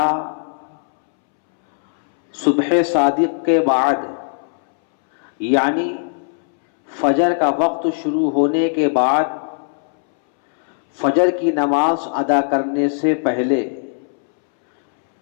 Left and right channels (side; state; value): right; silent; 65 dB below the other